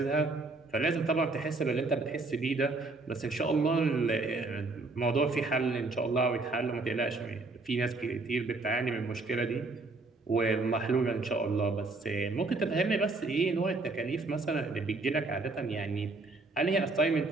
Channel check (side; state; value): left; quieter; 3.5 dB